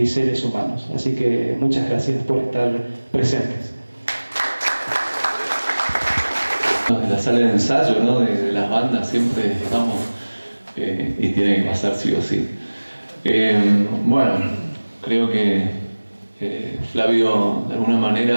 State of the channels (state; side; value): inverted; both; correlation -1.00